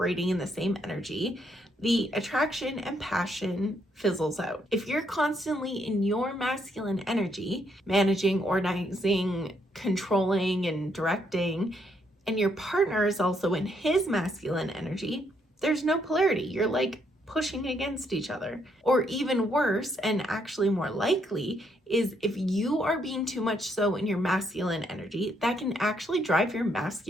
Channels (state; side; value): normal; both; correlation 0.74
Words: in the same energy, the attraction and passion fizzles out. If you're constantly in your masculine energy, managing, organizing, controlling, and directing, and your partner is also in his masculine energy, there's no polarity. You're like pushing against each other. Or even worse, and actually more likely, is if you are being too much so in your masculine energy, that can actually drive your